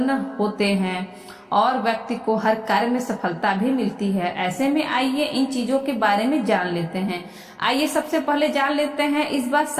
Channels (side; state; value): both; identical; correlation 1.00